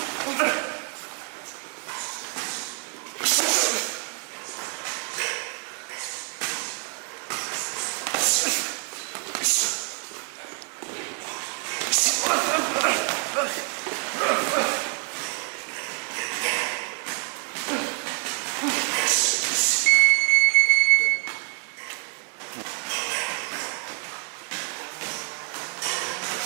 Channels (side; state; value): left; quieter; 39.3 dB